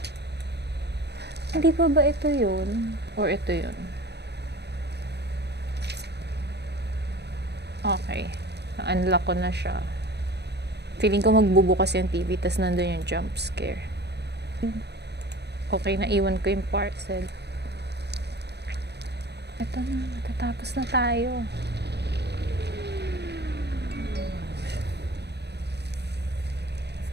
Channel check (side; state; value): left; late; 0.49 ms